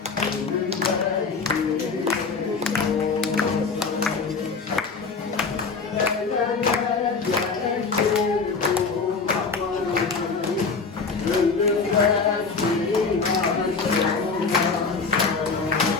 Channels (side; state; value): right; quieter; 4.7 dB